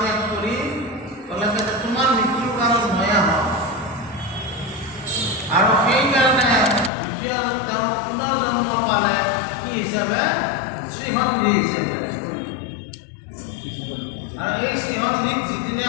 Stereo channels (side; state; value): right; drops out; at 6.9 s